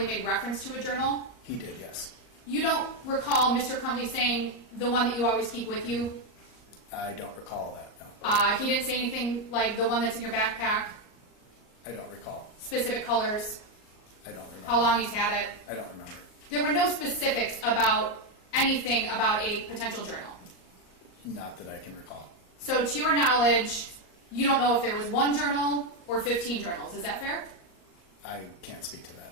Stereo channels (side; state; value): right; late; 38 ms